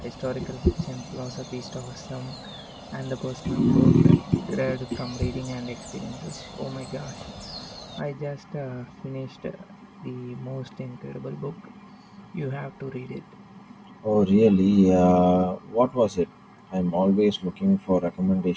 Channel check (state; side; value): identical; both; correlation 1.00